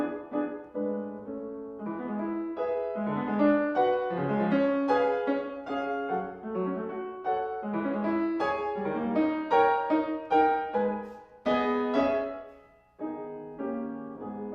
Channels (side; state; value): both; identical; correlation 1.00